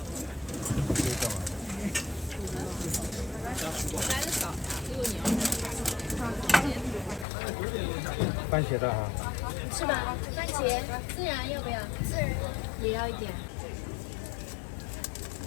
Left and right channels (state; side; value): drops out; right; at 7.2 s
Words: 番茄的啊。是吧？番茄孜然要不要？孜然也要一点。